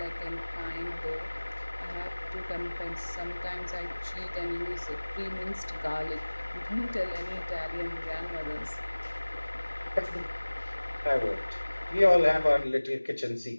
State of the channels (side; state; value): both; inverted; correlation -1.00